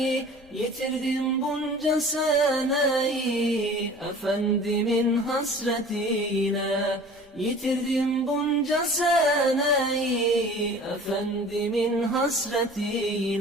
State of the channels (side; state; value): left; noise; rumble, 30 dB below the sound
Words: Yitirdim bunca seneyi, Efendimin hasretiyle. Yitirdim bunca seneyi, Efendimin